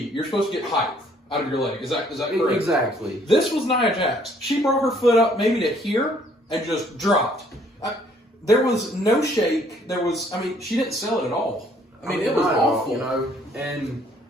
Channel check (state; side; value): normal; both; correlation 0.62